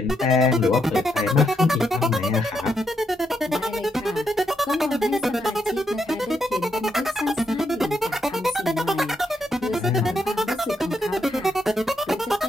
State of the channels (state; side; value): normal; both; correlation 0.79